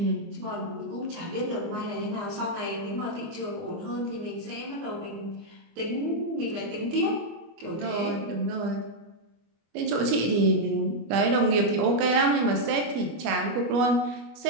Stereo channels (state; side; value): late; left; 24 ms